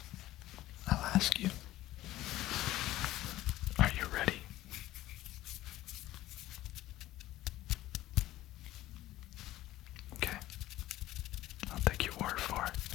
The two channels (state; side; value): quieter; right; 15.4 dB